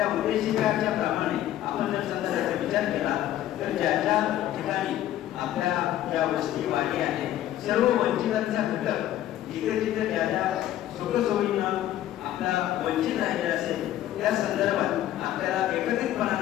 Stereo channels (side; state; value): right; quieter; 12.8 dB